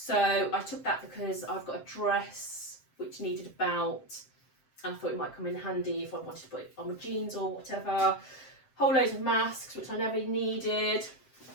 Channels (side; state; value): right; late; 7.6 ms